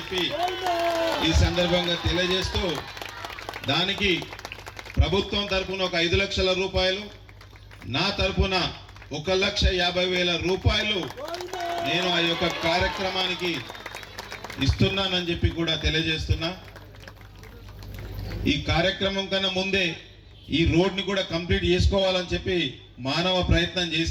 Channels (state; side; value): identical; both; correlation 1.00